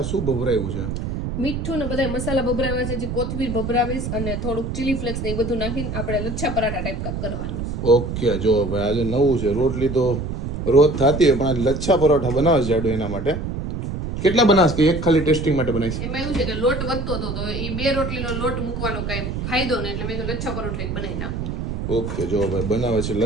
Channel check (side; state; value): right; noise; rumble, 4 dB below the sound